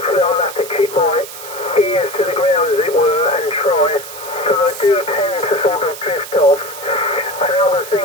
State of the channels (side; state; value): right; noise; hiss, 13 dB below the sound